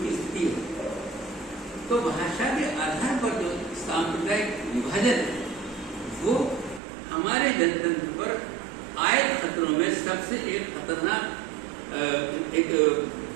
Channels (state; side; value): drops out; left; at 6.8 s